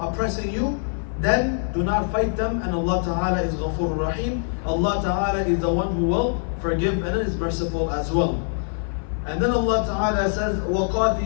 you, then do not fight them, and Allah Ta'ala is Ghafur Rahim. Allah Ta'ala is the one who will forgive and is merciful as well. And then Allah Ta'ala says,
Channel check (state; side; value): silent; right; 55 dB below the other